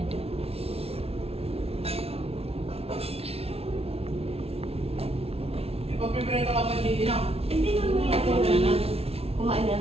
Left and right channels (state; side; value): late; left; 0.29 ms